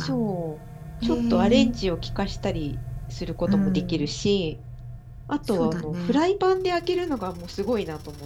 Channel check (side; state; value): both; identical; correlation 1.00